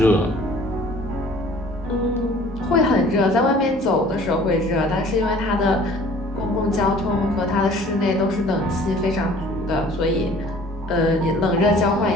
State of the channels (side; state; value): both; normal; correlation 0.51